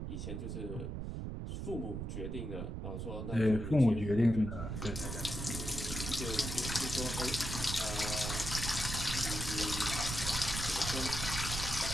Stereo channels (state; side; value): noise; right; rumble, 4 dB below the sound